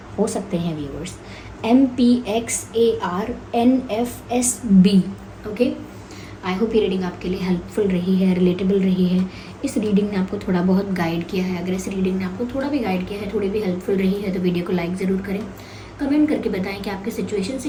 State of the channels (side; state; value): both; identical; correlation 1.00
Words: हो सकते हैं viewers. MPXARNFSB। Okay, I hope ये रीडिंग आपके लिए हेल्पफुल रही है, रिलेटेबल रही है। इस रीडिंग ने आपको थोड़ा बहुत गाइड किया है। अगर इस रीडिंग ने आपको थोड़ा भी गाइड किया है, थोड़ी भी हेल्पफुल रही है, तो वीडियो को लाइक ज़रूर करें, कमेंट करके बताएं कि आपके सिचुएशन से